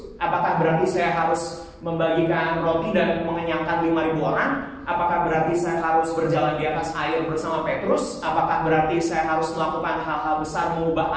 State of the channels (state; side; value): identical; both; correlation 1.00